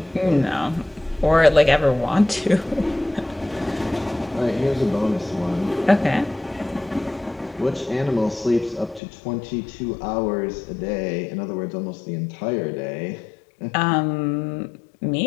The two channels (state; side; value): drops out; right; at 9.0 s